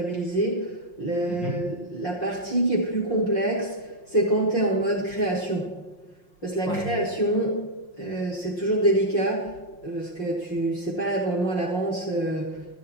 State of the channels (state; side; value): late; right; 5.6 ms